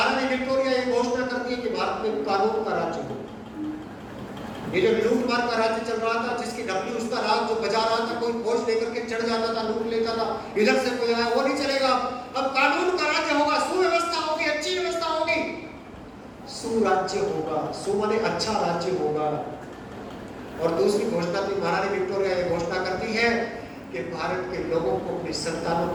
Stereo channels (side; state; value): both; identical; correlation 1.00